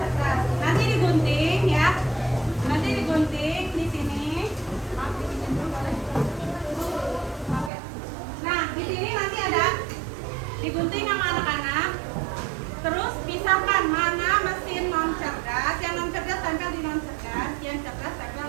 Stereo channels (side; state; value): left; drops out; at 7.7 s